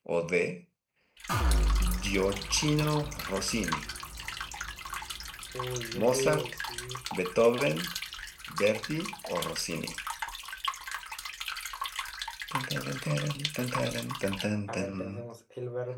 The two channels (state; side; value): identical; both; correlation 1.00